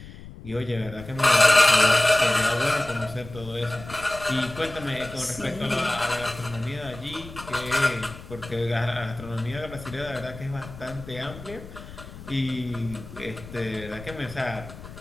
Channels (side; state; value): left; noise; rumble, 15 dB below the sound